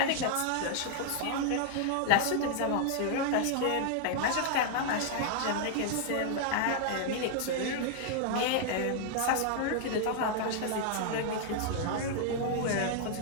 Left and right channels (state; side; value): different; both; correlation 0.00